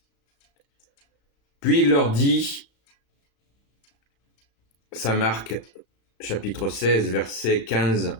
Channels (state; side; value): late; right; 36 ms